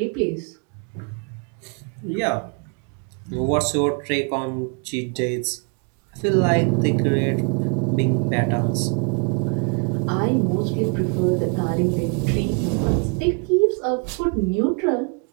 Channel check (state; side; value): quieter; left; 34.6 dB